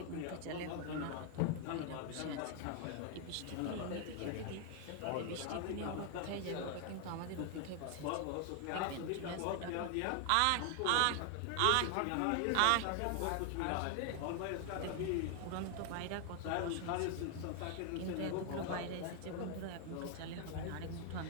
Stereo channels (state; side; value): different; both; correlation 0.00